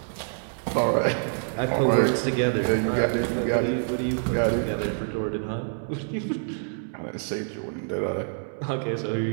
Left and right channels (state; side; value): silent; left; 61 dB below the other